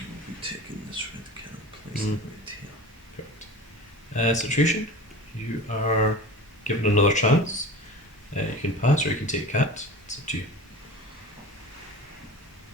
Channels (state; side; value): normal; both; correlation 0.35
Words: be taking this red cat and place it right here. Correct. Situation, you are given another chance. You can pass or you can take cat. It's up to you.